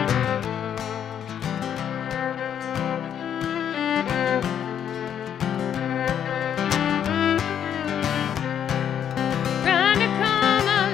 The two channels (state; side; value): quieter; right; 9.1 dB